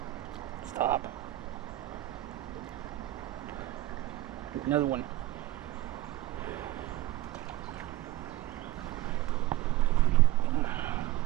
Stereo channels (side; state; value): left; quieter; 16.2 dB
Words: Stop. Another one.